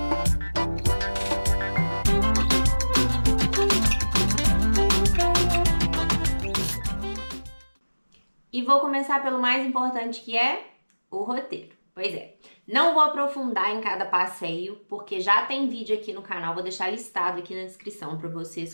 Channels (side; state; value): both; inverted; correlation -1.00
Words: E vou começar pelo mais importante, que é o roteiro. Pois é, não vou aprofundar em cada passeio, porque já tem vídeo aqui no canal, vou deixar listado aqui na descrição para